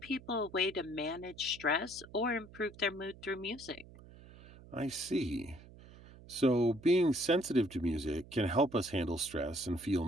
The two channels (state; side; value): noise; right; hum, 20 dB below the sound